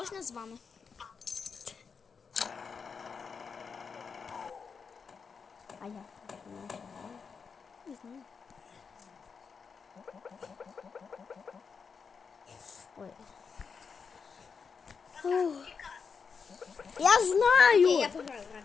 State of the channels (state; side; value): quieter; right; 5.7 dB